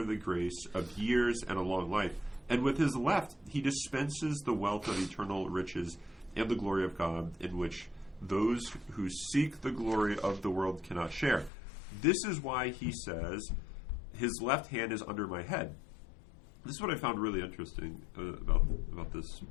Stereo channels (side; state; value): right; drops out; at 11.5 s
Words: the grace of years and a long life. And with his left, he dispenses the wealth of eternal riches and the glory of God, in which those who seek the glory of the world cannot share. This is why he says, his left hand is under my head. This is what I found really interesting about this